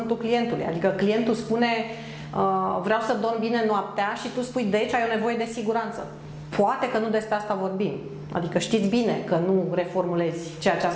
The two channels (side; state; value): both; identical; correlation 1.00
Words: clientului. Adică clientul spune vreau să dorm bine noaptea și tu spui deci ai o nevoie de siguranță. Poate că nu despre asta vorbim. Adică știți bine că nu reformulezi ceea ce a